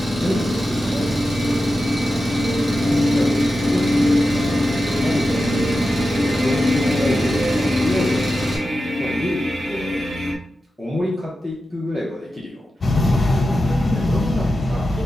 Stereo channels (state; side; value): normal; both; correlation 0.91